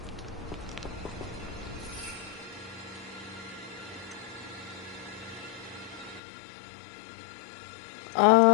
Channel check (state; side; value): drops out; right; at 6.2 s